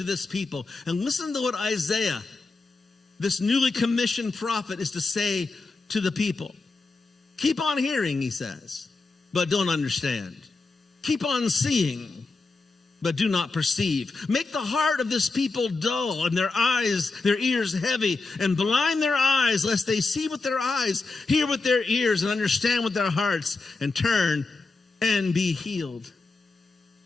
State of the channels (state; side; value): quieter; right; 3.7 dB